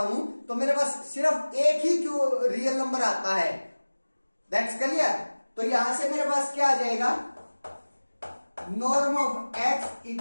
तो मेरे पास सिर्फ एक ही रियल नंबर आता है। That's clear. तो यहां से मेरे पास क्या आ जाएगा, norm of x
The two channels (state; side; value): inverted; both; correlation -1.00